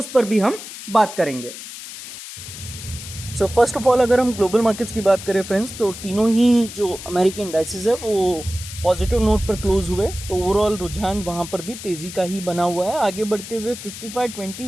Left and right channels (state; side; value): noise; left; hiss, 12 dB below the sound